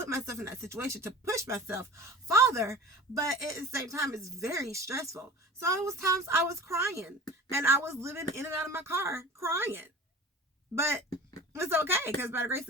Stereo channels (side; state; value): both; normal; correlation 0.38